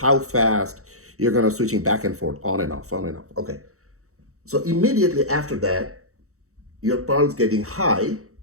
fast you're going to switching back and forth, on and off, on and off. Okay. So immediately after that, your pulse getting high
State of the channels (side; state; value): left; late; 0.64 ms